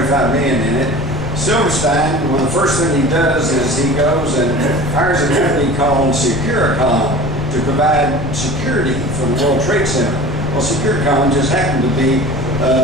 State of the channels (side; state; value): left; noise; rumble, 7 dB below the sound